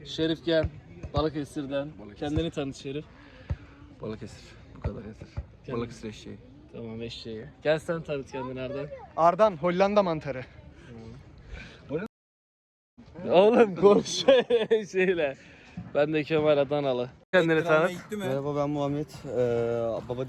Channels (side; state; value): both; identical; correlation 1.00